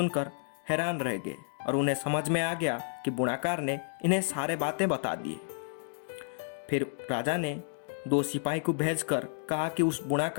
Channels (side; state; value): right; silent; digital silence